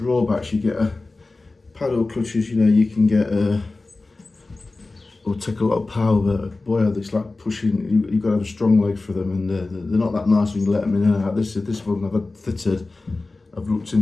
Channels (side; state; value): right; quieter; 3.4 dB